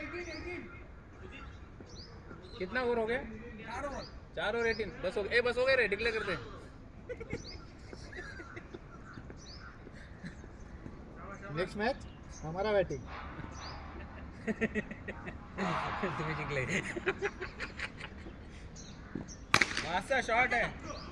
कितना ओवर हो गया 4 और 18 बस हो बस हो गए रे डिक्लेअर करते नेक्स्ट मॅच हमारा बॅटिंग तुम्ही जिंकले मासा शॉट आहे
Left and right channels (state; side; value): identical; both; correlation 1.00